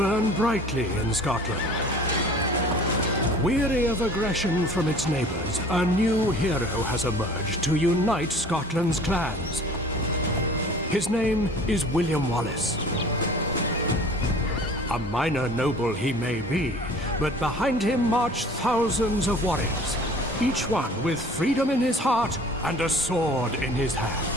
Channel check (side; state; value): both; normal; correlation 0.47